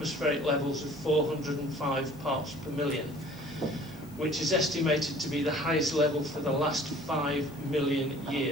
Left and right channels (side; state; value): left; noise; hiss, 26 dB below the sound